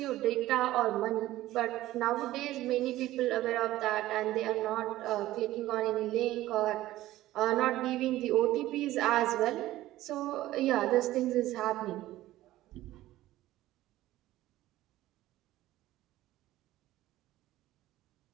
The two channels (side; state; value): left; quieter; 15.6 dB